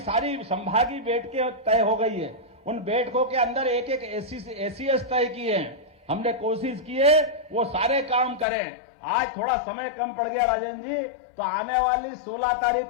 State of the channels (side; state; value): right; drops out; at 8.5 s